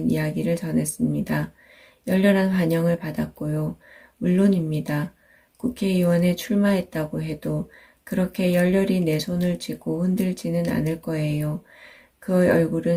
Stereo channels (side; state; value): both; identical; correlation 1.00